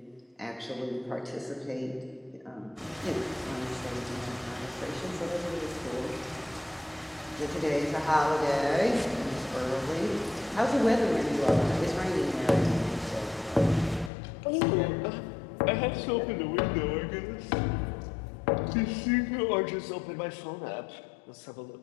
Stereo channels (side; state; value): right; drops out; at 14.1 s